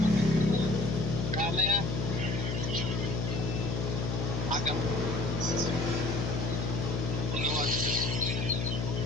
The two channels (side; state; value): left; noise; hum, 2 dB below the sound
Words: Kamaya. Agam. Puluhan.